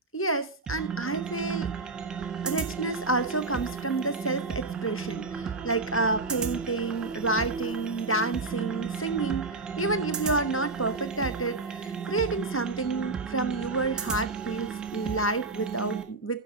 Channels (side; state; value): left; quieter; 3.5 dB